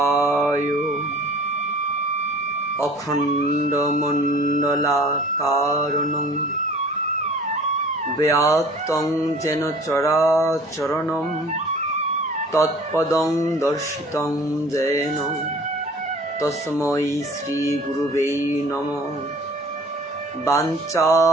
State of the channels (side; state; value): both; normal; correlation 0.48